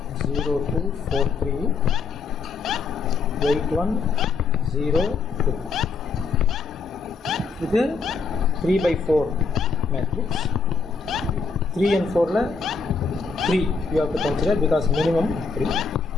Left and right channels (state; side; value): quieter; right; 4.8 dB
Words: 0 2 4 3 8 1 0 2. இது 3 by 4 matrix. 3 and 4 la 3 you have to consider because minimum 3.